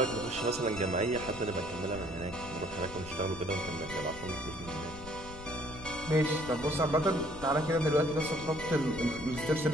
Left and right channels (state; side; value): noise; left; rumble, 15 dB below the sound